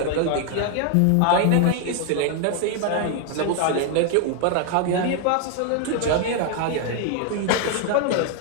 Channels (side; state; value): both; different; correlation 0.00